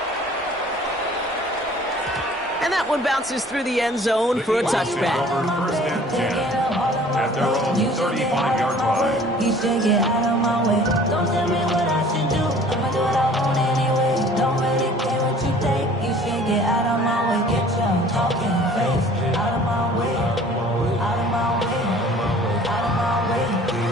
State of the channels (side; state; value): both; normal; correlation 0.50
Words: And that one bounces through the end zone for a touchback. First and 10 at their own 35-yard line. You should get out of my way. Don't tell me what I should do. I'ma do what I want anyway. Don't really care what you think. You should get out of my way. Get your talking face out of my way. Out of my way. Out of my way.